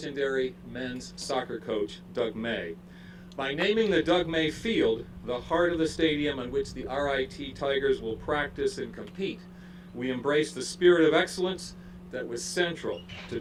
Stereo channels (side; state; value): both; identical; correlation 1.00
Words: men's soccer coach, Doug May. By naming the Doug May Field the heart of the stadium on which the RIT Tigers will practice and compete, we embrace the spirit of excellence that was central to